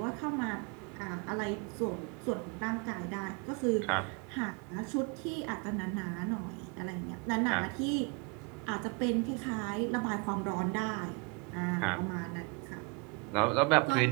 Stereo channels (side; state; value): left; quieter; 29.2 dB